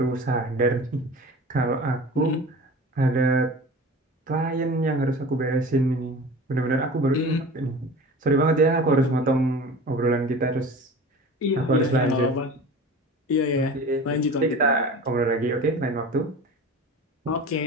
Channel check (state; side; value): normal; both; correlation 0.37